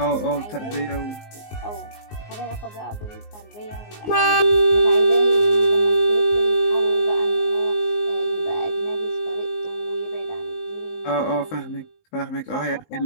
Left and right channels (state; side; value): late; right; 19 ms